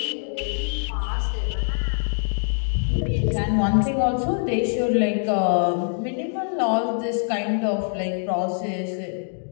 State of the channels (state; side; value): silent; right; digital silence